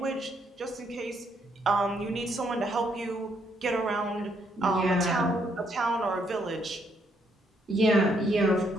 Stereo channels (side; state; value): both; normal; correlation 0.73